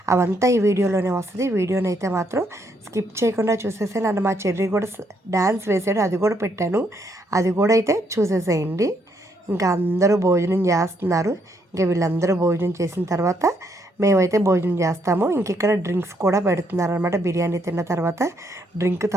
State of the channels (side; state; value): both; normal; correlation 0.73